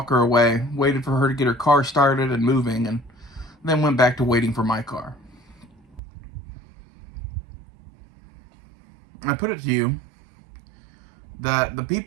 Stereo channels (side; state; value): left; drops out; at 6.0 s